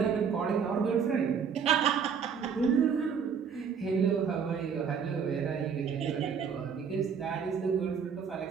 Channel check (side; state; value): left; quieter; 6.7 dB